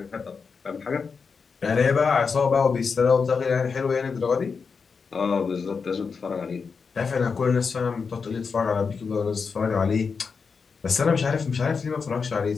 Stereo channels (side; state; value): right; quieter; 5.3 dB